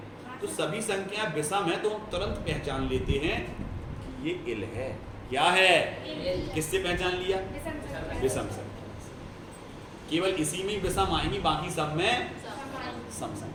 तो सभी संख्याएं विषम है, तो हम तुरंत पहचान लेते हैं कि ये इल है। क्या है? किससे पहचान लिया? विषम संख्या। केवल इसी में विषम आएंगी, बाकी सब में सम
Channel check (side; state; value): both; identical; correlation 1.00